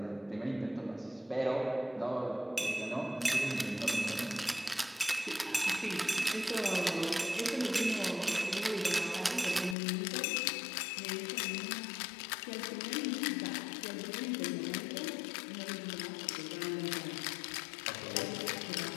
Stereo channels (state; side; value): drops out; right; at 9.8 s